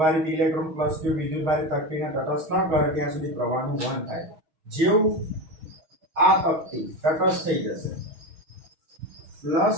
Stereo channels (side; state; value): left; late; 6.2 ms